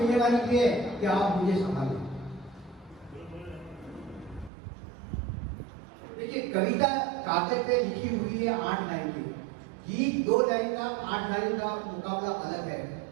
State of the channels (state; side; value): drops out; left; at 4.5 s